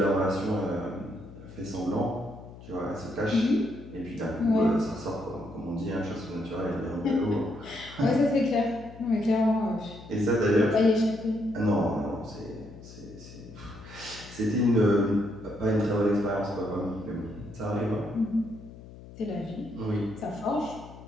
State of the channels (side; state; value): left; noise; hum, 17 dB below the sound